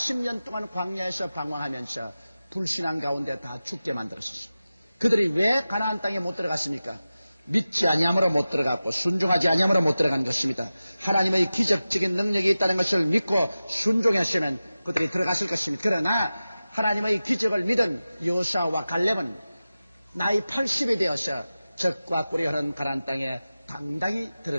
동안 광야에서 방황하면서 불신앙 가운데 다 죽게 만들었습니다. 그들이 왜 가나안 땅에 못 들어갔습니까? 믿지 아니함으로 못 들어갔고 순종하지 아니함으로 못 들어간 것입니다. 하나님의 기적적인 능력이 있다는 것을 믿고 순종했으면 그들이 들어갔을 것입니다. 그러나 하나님의 기적을 믿은 여호수아와 갈렙은 나이 80이 되어서 적과 꿀이 흐르는 가나안 땅에 당당히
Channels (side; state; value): both; inverted; correlation -0.95